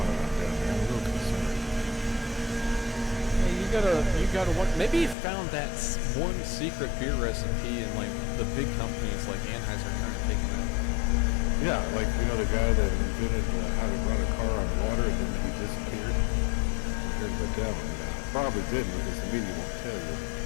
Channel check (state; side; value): drops out; right; at 5.2 s